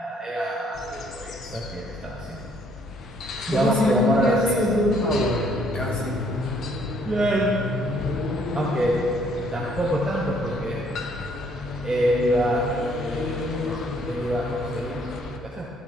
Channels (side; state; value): both; normal; correlation 0.65